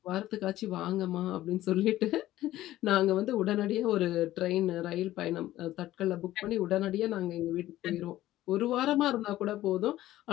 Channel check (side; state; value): right; quieter; 14.9 dB